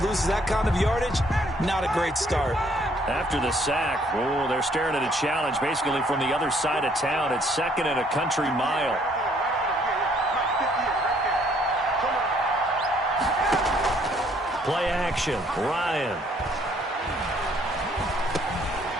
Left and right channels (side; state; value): both; normal; correlation 0.64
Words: loses that kind of yardage, not a great start. After the sack, oh, they're staring at a challenge basically from the other side of town. It's 2nd and a country mile. Play action. Ryan.